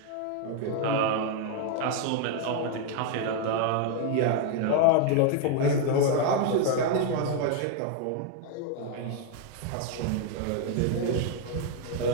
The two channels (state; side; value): different; both; correlation 0.01